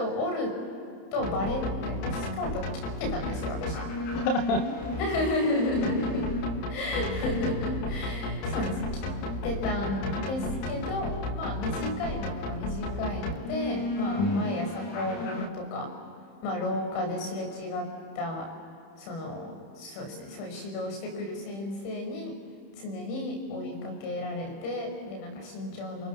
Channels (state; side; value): late; right; 31 ms